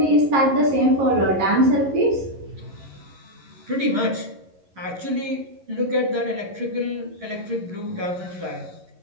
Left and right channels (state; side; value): late; left; 11 ms